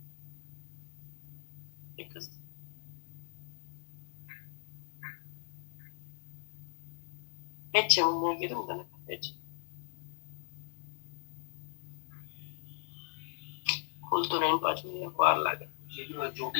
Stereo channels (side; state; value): right; silent; digital silence